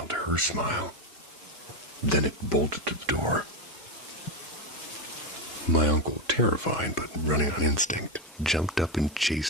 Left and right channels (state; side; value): normal; both; correlation 0.10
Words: her smile. Then it bolted to the door. My uncle, terrified but running on instinct, jumped up and